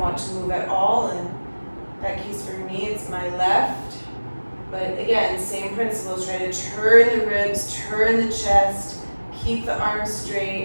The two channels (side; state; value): both; inverted; correlation -1.00